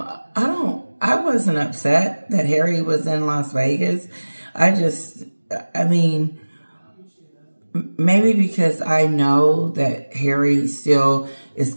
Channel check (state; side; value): inverted; both; correlation -1.00